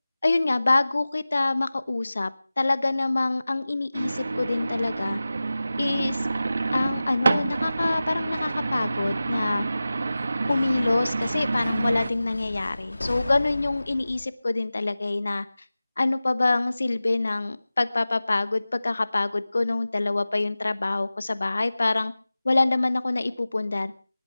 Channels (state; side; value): inverted; both; correlation -0.96